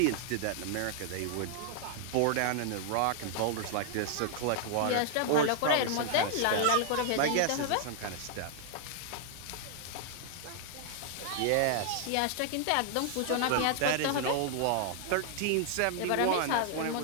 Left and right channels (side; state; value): both; different; correlation 0.00